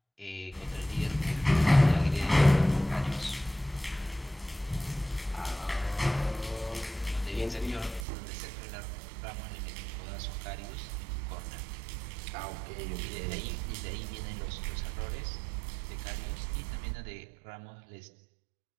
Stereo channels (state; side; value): drops out; left; at 8.0 s